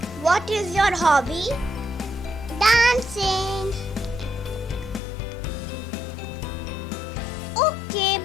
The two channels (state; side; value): drops out; right; at 5.0 s